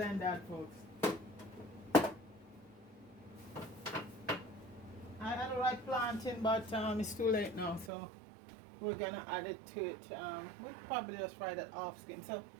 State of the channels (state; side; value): drops out; left; at 7.9 s